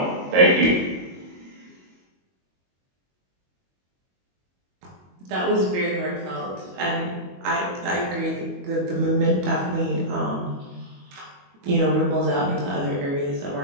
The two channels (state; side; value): late; left; 22 ms